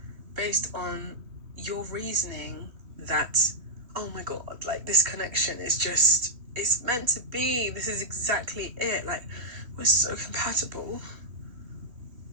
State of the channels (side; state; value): left; late; 3.1 ms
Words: based on your reasoning that, oh my God, like this connection is just, it's meant to be. This is exactly it. Like, we're so compatible.